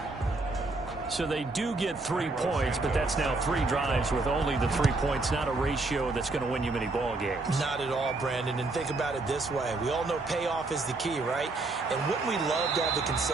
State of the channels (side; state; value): left; quieter; 3.3 dB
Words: So they do get 3 points, but that's now 3 drives with only the 3 points, not a ratio that's going to win you many ball games. Not at all, Brandon. And think about it this way. We all know payoff is the key, right? And wouldn't we love to have the